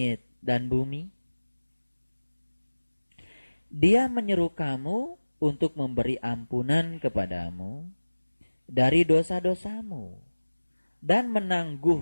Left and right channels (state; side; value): inverted; both; correlation -1.00